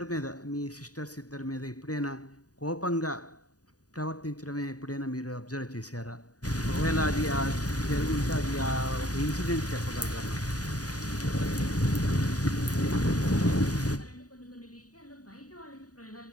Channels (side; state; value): right; late; 0.68 ms